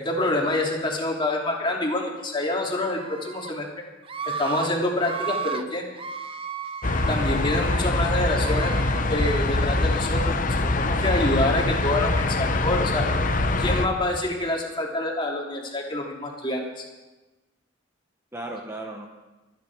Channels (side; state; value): both; normal; correlation 0.40